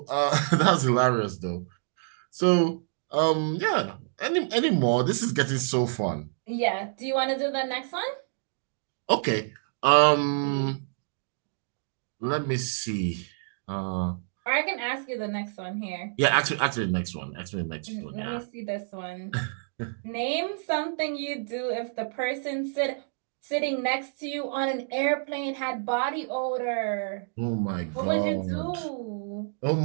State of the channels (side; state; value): left; silent; digital silence